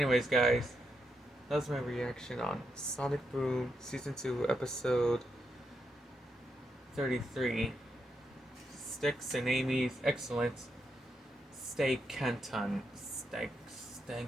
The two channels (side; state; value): both; normal; correlation 0.82